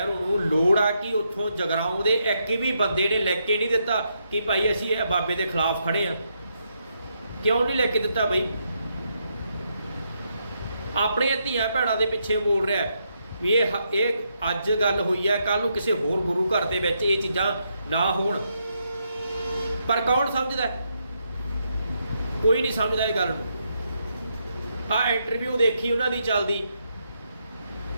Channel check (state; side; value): inverted; both; correlation -0.79